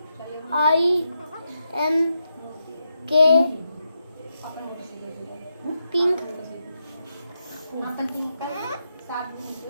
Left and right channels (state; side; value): inverted; both; correlation -0.84